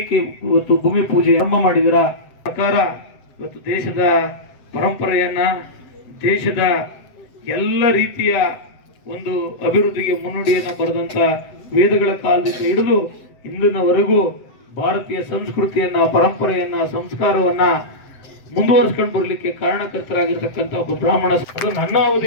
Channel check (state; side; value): late; right; 7.8 ms